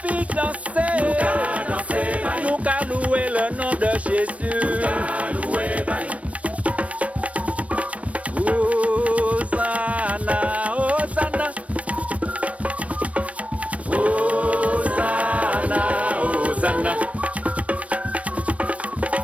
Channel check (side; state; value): left; late; 0.065 ms